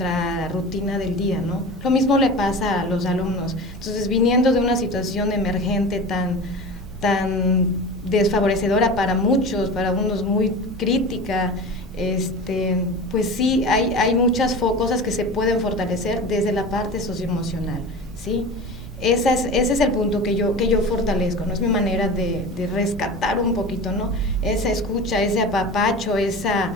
rutina del día, ¿no? Lo mismo le pasa a los alumnos. Entonces, viniendo de una situación emergente tan desfavorecedora para muchos, para unos muy crítica, pues sí, hay muchas cosas que se pueden fortalecer desde la parte socioemocional, ¿sí? Ese es el punto que yo fortalezco, ¿no? Es mi manera de rescatar un poquito, ¿no? Esa escucha, ese apapacho, esa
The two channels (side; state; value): both; normal; correlation 0.32